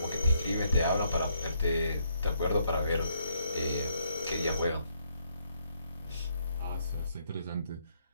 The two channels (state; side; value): inverted; both; correlation -0.72